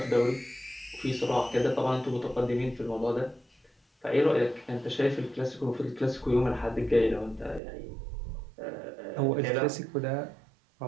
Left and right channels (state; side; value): drops out; left; at 7.6 s